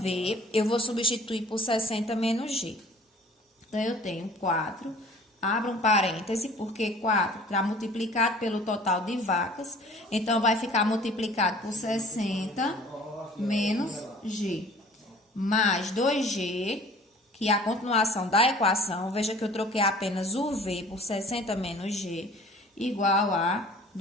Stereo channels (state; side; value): normal; both; correlation 0.49